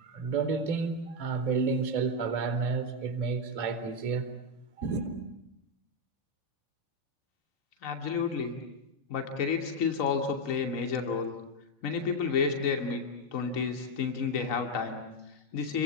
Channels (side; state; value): right; late; 3.9 ms